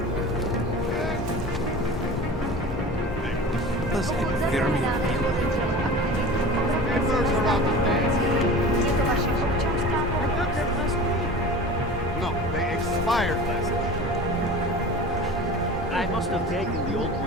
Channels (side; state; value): both; normal; correlation 0.37